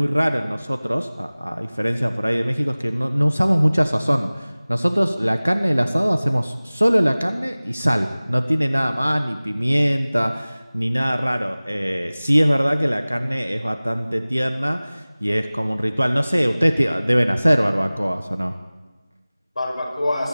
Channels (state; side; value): inverted; both; correlation -0.99